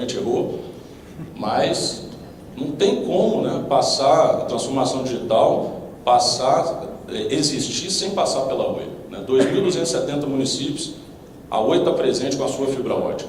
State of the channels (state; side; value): identical; both; correlation 1.00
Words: errou. Mas não tem como, né, passar a transformação digital, existir sem passar pela Oi. Né? 2.270 municípios, a Oi está presente com a sua fibra ótica.